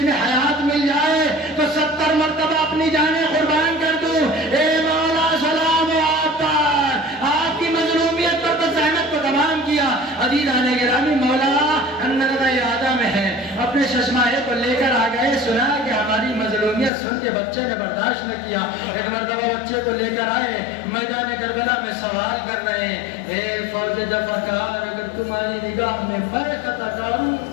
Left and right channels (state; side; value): drops out; right; at 16.9 s